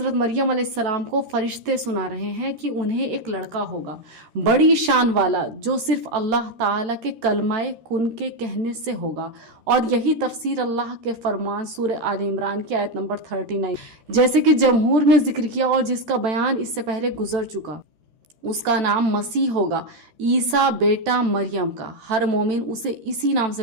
مریم علیہ السلام کو فرشتے سنا رہے ہیں کہ انہیں ایک لڑکا ہوگا، بڑی شان والا، جو صرف اللہ تعالیٰ کے کلمہ کن کے کہنے سے ہوگا۔ اور یہی تفسیر اللہ کے فرمان سورہ آل عمران کی آیت نمبر 39 جیسے کہ جمہور نے ذکر کیا اور جس کا بیان اس سے پہلے گزر چکا، اس کا نام مسیح ہوگا، عیسیٰ بیٹا مریم کا۔ ہر مومن اسے اسی نام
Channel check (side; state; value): left; late; 13 ms